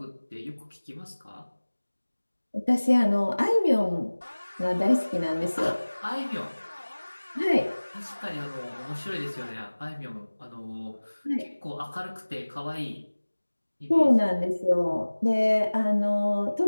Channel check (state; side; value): inverted; both; correlation -1.00